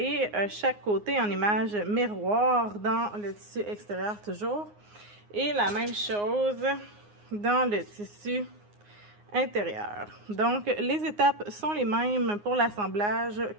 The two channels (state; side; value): late; left; 9.6 ms